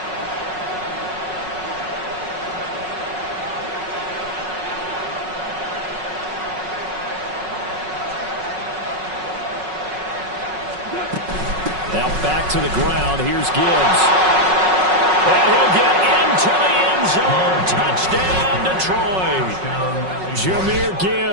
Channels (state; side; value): late; left; 5.4 ms